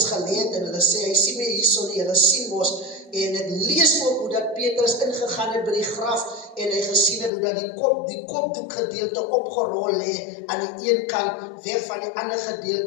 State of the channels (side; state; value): right; drops out; at 7.3 s